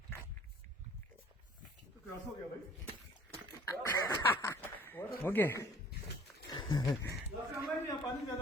तो क्रॉस हो गया भाई। ओके। लास्ट टाइम में यहाँ पानी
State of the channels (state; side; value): normal; both; correlation 0.52